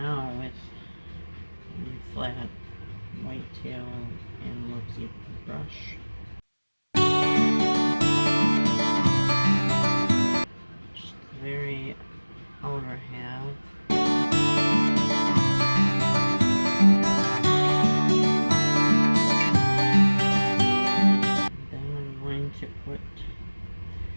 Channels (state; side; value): inverted; both; correlation -1.00